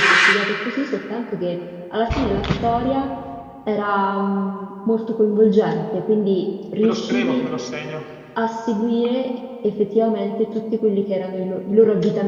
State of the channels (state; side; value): identical; both; correlation 1.00